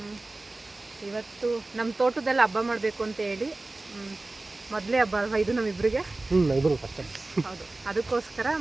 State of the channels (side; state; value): left; quieter; 3.1 dB